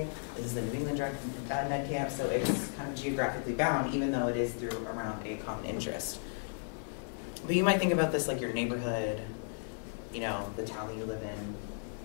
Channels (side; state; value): right; silent; digital silence